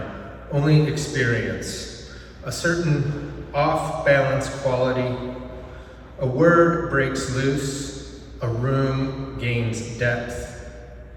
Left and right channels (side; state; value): both; identical; correlation 1.00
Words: only experience. A certain off-balance quality. A word breaks loose, a room gains depth.